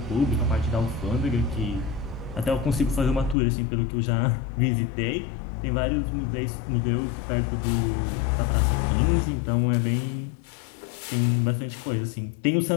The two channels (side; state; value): right; drops out; at 3.4 s